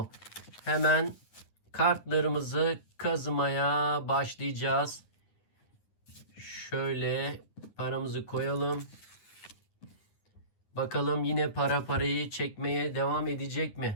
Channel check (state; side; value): late; right; 9.6 ms